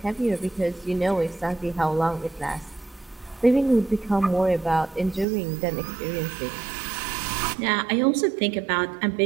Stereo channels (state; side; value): drops out; left; at 5.2 s